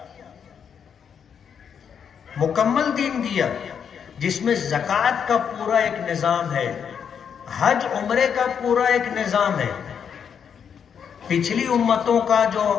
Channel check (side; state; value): right; quieter; 7.5 dB